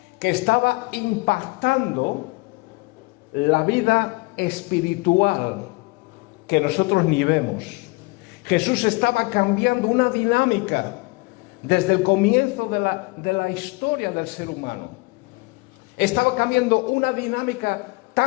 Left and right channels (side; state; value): right; quieter; 25.7 dB